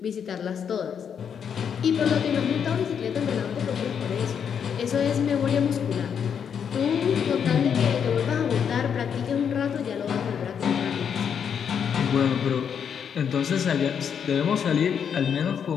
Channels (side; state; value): right; quieter; 7.6 dB